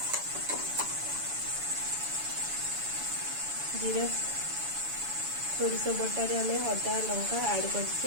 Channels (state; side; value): late; left; 7.0 ms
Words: जीरा सोरिष बटा रे हमें अदा लंका ऐड